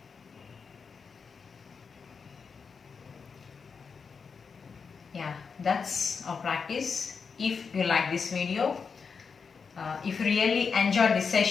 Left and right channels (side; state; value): right; quieter; 5.6 dB